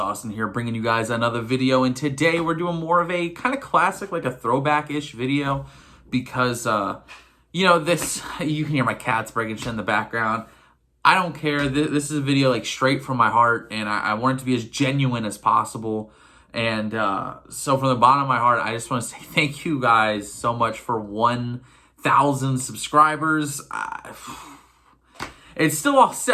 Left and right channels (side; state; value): both; identical; correlation 1.00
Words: here bringing you guys another video, and today we're doing more of a kind of classic, like a throwback-ish video because, this, you can hear my cats breaking shit in the background. I don't care. This is a video like straight from my heart, and I want it to be as genuine as possible. And so from the bottom of my heart, I just want to say thank you guys so much for 1,000 subscribers. It's still all